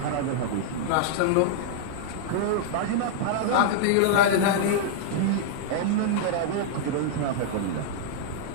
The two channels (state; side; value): different; both; correlation -0.01